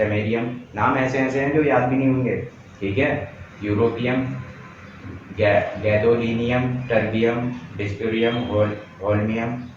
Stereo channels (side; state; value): both; identical; correlation 1.00